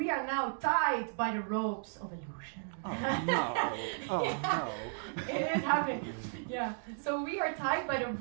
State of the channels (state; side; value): silent; left; digital silence